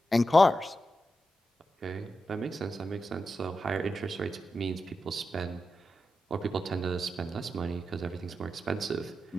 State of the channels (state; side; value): normal; both; correlation 0.89